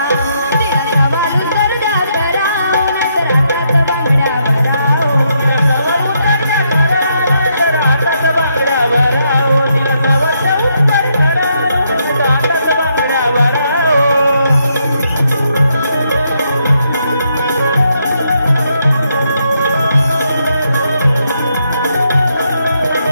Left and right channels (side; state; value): both; inverted; correlation -0.77